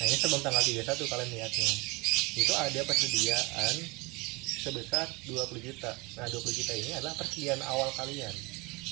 ini sebelum tanggal 31 kalian lihatnya. Itu ada persediaan sebesar 20 juta. Nah, 20 juta ini adalah persediaan awal kalian.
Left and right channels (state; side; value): quieter; left; 25.7 dB